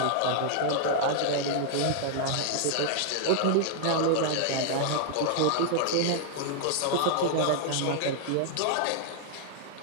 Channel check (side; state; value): both; different; correlation 0.00